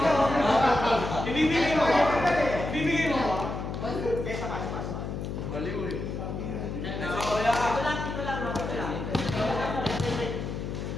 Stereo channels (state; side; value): noise; left; hum, 5 dB below the sound